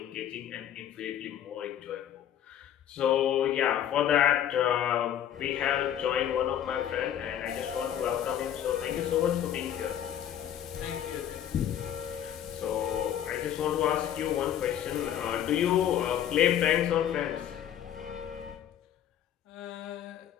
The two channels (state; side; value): quieter; right; 10.3 dB